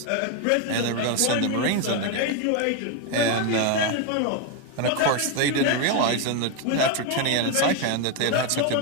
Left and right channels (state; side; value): different; both; correlation 0.01